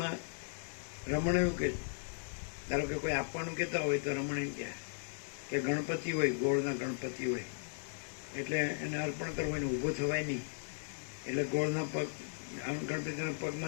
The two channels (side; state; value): right; silent; digital silence